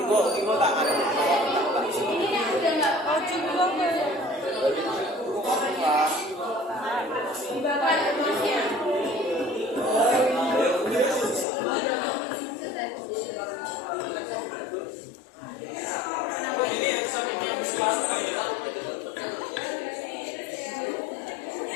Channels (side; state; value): right; drops out; at 11.5 s